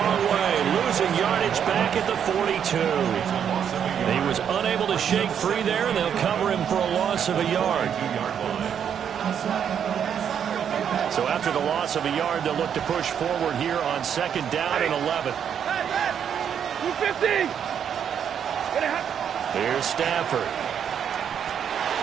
way. Losing yardage back at the 42. He was unable to shake free there, and they'll cover him for a loss of a yard. So after the loss of a yard, they'll look to push forward here on 2nd down and 11. 250! Here's Stafford.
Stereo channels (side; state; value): left; quieter; 8.4 dB